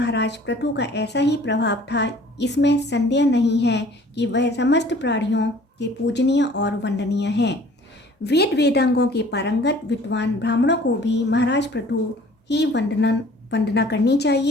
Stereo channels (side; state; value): both; normal; correlation 0.51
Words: पृथु का ऐसा ही प्रभाव था, इसमें संदेह नहीं है कि वह समस्त प्राणियों के पूजनीय और वंदनीय हैं। वेद वेदांगों के पारंगत विद्वान ब्राह्मणों को भी महाराज पृथु ही वंदना करनी